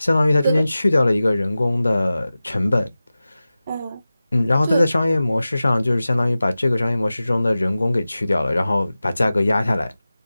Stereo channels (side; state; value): both; inverted; correlation -0.96